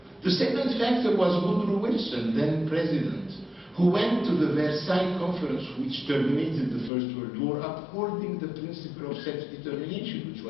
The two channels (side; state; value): right; drops out; at 6.9 s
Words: The second factor was Woodrow Wilson, then president, who went to the Versailles Conference, which terminated the First World War, upholding the principle of self-determination, which